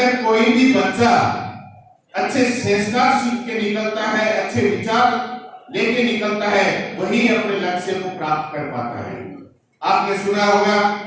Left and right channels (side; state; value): both; identical; correlation 1.00